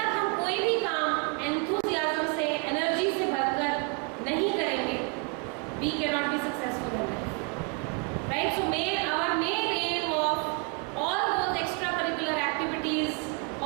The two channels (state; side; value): quieter; left; 33.7 dB